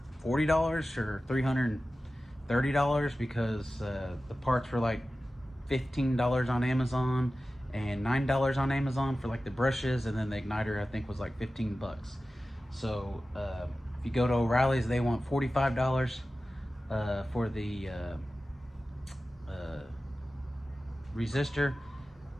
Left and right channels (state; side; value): normal; both; correlation 0.95